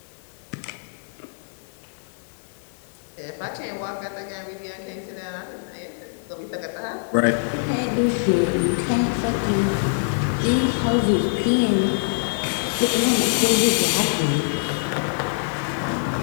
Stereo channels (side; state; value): right; silent; digital silence